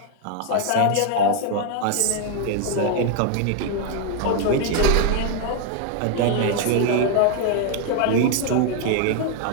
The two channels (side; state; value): both; different; correlation 0.01